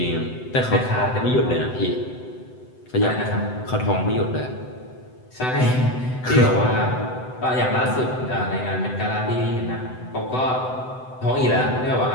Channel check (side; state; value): right; late; 7.9 ms